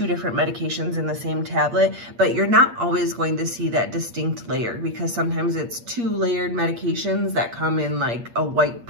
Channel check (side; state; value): left; late; 8.5 ms